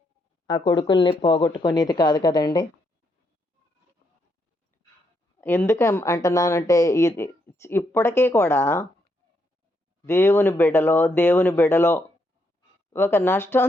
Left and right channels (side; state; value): both; normal; correlation 0.77